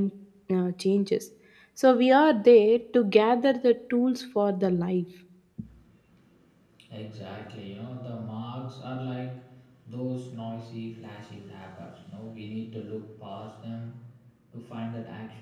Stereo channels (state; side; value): identical; both; correlation 1.00